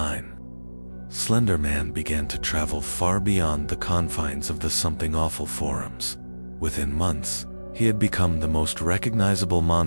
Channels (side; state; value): both; inverted; correlation -1.00